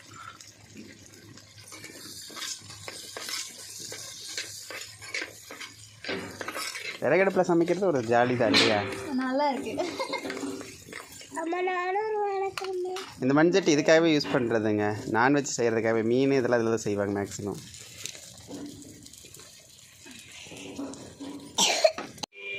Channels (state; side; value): identical; both; correlation 1.00